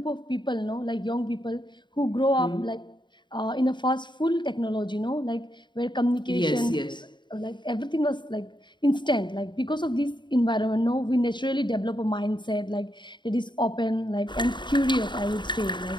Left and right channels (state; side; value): late; right; 0.22 ms